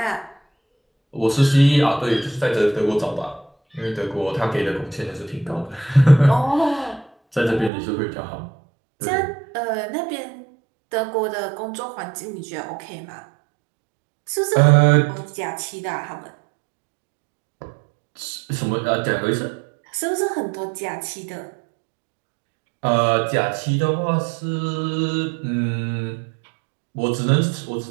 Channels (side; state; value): left; drops out; at 7.7 s